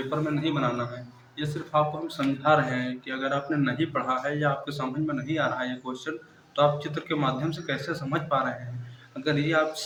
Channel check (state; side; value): identical; both; correlation 1.00